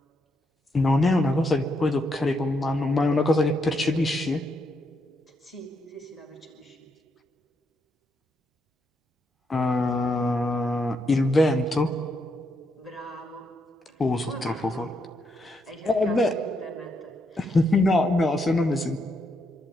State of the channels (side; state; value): both; normal; correlation 0.79